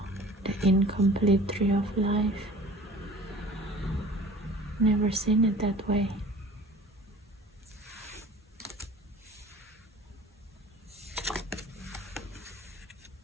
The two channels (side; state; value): both; normal; correlation 0.45